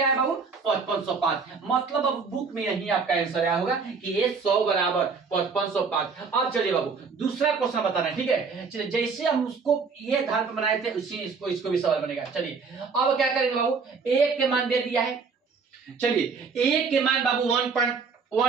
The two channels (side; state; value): left; quieter; 5.1 dB